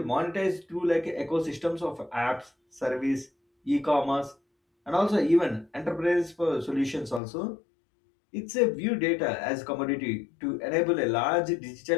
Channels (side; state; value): right; drops out; at 7.2 s